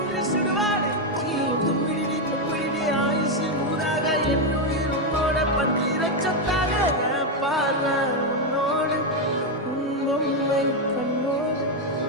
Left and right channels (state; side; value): normal; both; correlation 0.04